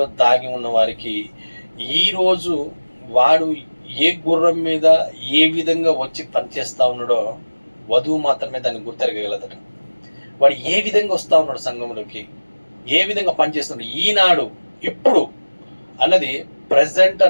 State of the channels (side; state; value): both; inverted; correlation -1.00